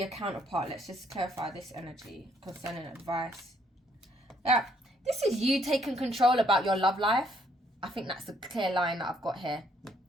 a counterpart. Let's just clarify this energy concerning advice. Yeah, this is you taking control about your love life. I think that's the clear line that I've got here.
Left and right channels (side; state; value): both; normal; correlation 0.68